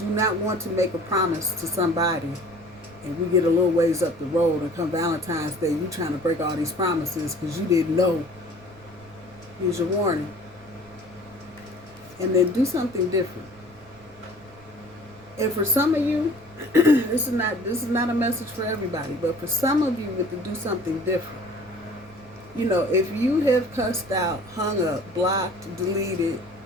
not want to make a promise to somebody and we get a little ways up the road and come Valentine's Day, you trying to break all these promises because you didn't know. Here's your warning. And then do something different. And for some of you, this is not a message for everybody, but for some of you with to do something different. You know, if you have cussed out, hung up, blocked, deleted,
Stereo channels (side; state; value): right; noise; rumble, 24 dB below the sound